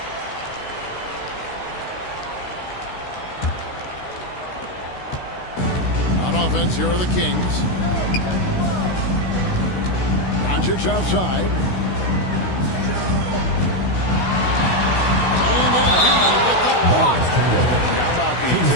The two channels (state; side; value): late; right; 16 ms